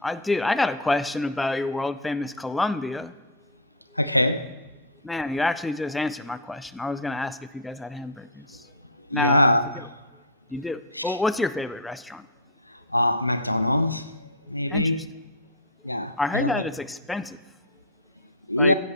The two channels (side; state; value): both; normal; correlation -0.13